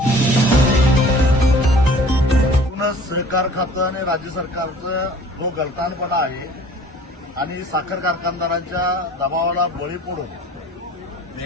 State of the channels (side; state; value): both; normal; correlation 0.49